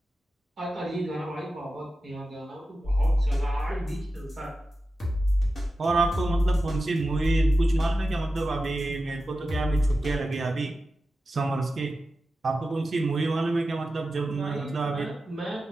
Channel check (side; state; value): both; normal; correlation 0.92